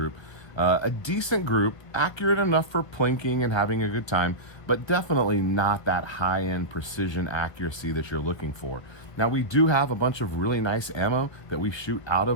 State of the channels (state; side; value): late; right; 1.4 ms